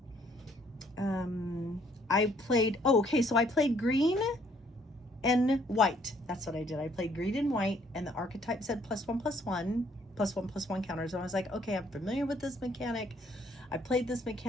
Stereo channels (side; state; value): both; normal; correlation 0.65